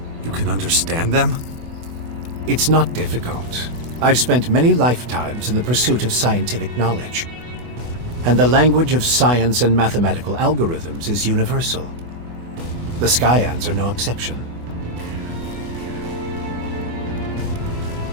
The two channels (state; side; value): late; left; 24 ms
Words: You can understand them? It's not difficult. I've spent many lifetimes in the pursuit of scientific knowledge. And the language of science and mathematical algorithms is universal. The Skyans are no exception.